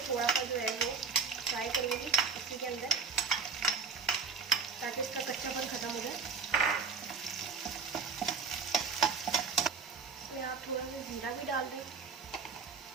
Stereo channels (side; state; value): left; quieter; 5.3 dB